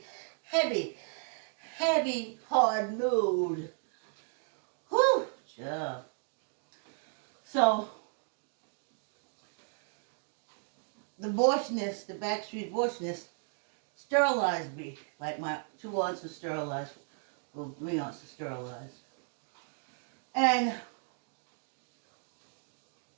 hard load. Whew, So, the abortionist, the backstreet abortionist, sterilized me. Like my 2 aunts were sterilized. Well, 3 aunts were sterilized. And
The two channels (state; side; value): silent; left; 55 dB below the other